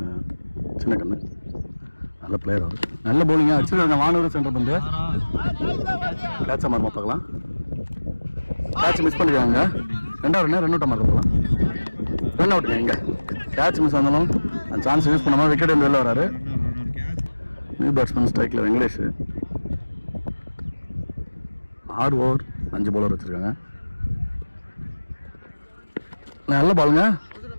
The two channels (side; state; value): both; inverted; correlation -1.00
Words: கண்ணு நல்ல பிளேயர் அவர். நல்ல பவுலிங்காக வச்சுருக்காங்க. வானூர் சென்டர் பந்து கேட்சா மாறுமா பார்க்கலாம். கேட்ச் மிஸ் பண்ணிருக்காங்க. 2வது ரன் அவுட்டாக மாறுறதுலாம் ரன் அவுட்டுங்க. எங்கே கேட்ச் மிஸ் ஆனாலும் அந்த சான்ஸ் யூஸ் பண்ணாமல் விக்கெட் வந்து வெளில வராரு. நியூ பேட்ஸ்மேன் ஸ்ட்ரைக்கில் வெங்கடேஷ். 6 ஓவர் 5 பவுலர் வச்சுருக்காங்க. நல்ல பாலுங்க,